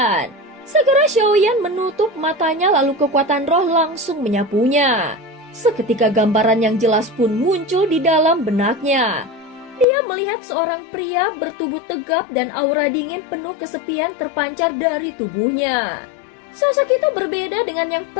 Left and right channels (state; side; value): drops out; right; at 9.9 s